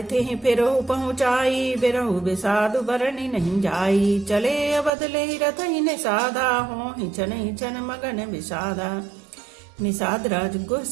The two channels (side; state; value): left; drops out; at 4.9 s